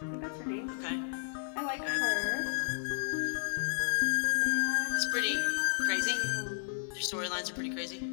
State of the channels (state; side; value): silent; right; digital silence